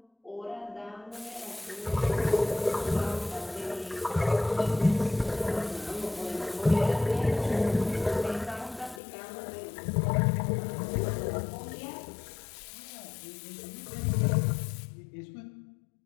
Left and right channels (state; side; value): drops out; right; at 9.0 s